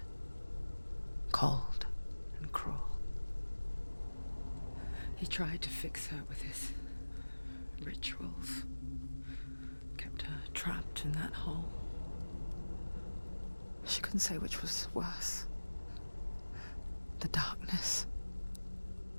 cold and cruel. He tried to fix her with his rituals, kept her trapped in that hole. She couldn't say which was worse. The darkness,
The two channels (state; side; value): inverted; both; correlation -1.00